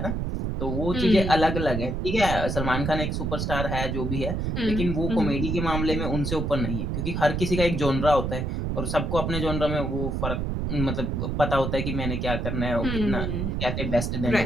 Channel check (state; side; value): noise; right; rumble, 1 dB below the sound